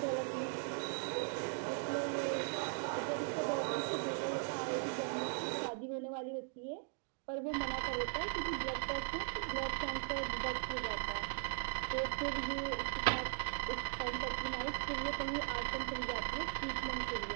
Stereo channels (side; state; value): left; silent; 52 dB below the other